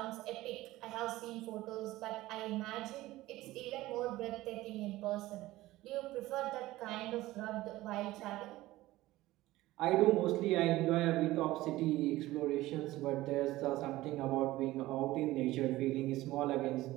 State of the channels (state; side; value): quieter; left; 17.3 dB